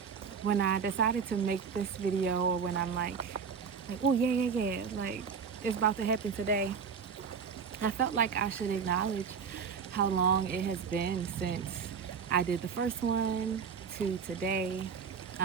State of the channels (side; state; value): left; quieter; 6.3 dB